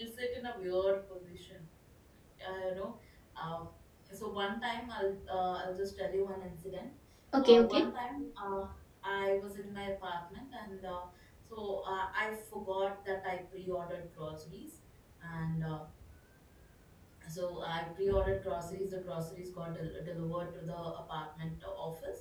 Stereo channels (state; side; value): identical; both; correlation 1.00